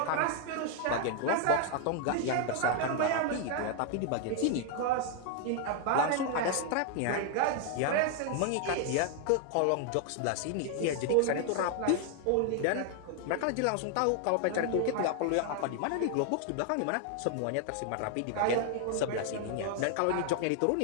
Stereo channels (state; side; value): different; both; correlation 0.00